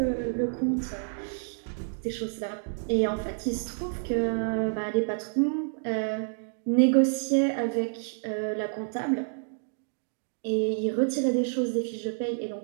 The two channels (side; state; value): left; silent; digital silence